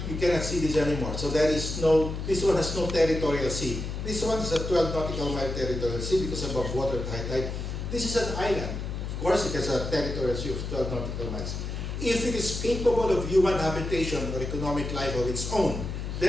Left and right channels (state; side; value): noise; left; hum, 5 dB below the sound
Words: you cannot see this anymore. So there is no, this one has no territorial sea. This one is a 12 nautical mile territorial sea because above water at high tide. This is an island. Of course, it has a territorial sea of 12 nautical miles. If it is capable of human habitation or economic life of its own,